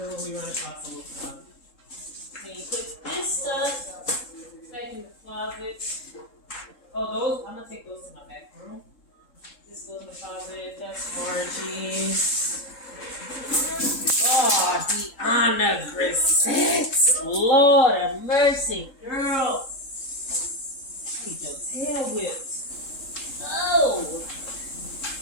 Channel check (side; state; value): right; late; 3.7 ms